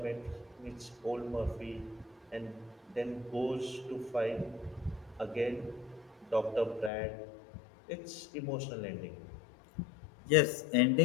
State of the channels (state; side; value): drops out; right; at 6.9 s